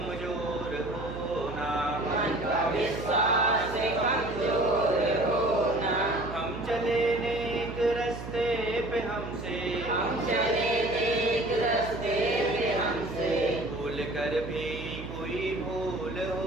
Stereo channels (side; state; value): right; noise; hum, 10 dB below the sound